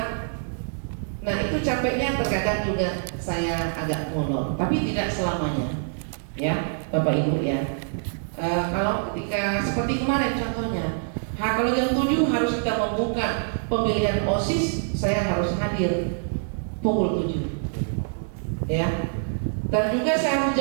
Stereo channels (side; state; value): left; silent; digital silence